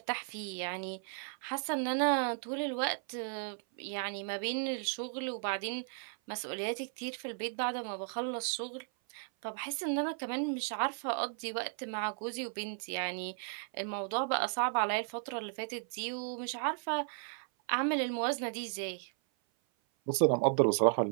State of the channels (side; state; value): left; silent; 54 dB below the other